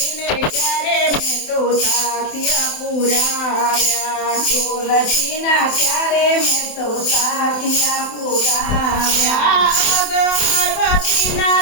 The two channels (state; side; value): late; right; 27 ms